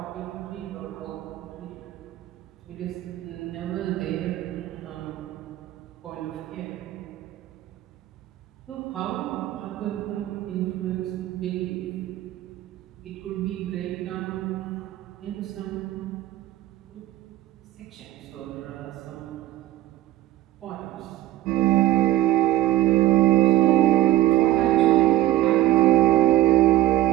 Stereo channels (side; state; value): left; quieter; 15.0 dB